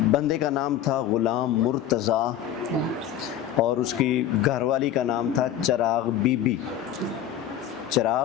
بندے کا نام تھا غلام مرتضیٰ اور اس کی گھر والی کا نام تھا چراغ بی بی۔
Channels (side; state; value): right; quieter; 10.6 dB